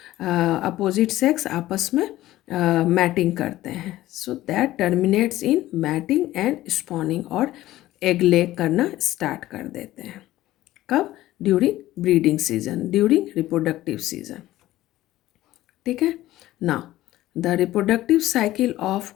अपोजिट सेक्स आपस में मैटिंग करते हैं। So that terminates in mating and spawning, और एग ले करना स्टार्ट कर देते हैं। कब? During breeding season, during reproductive season. ठीक है ना। The reproductive cycle of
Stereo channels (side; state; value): right; quieter; 15.5 dB